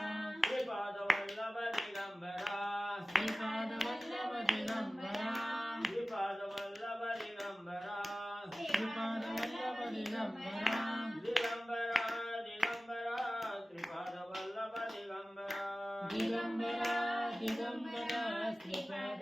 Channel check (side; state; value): both; normal; correlation 0.97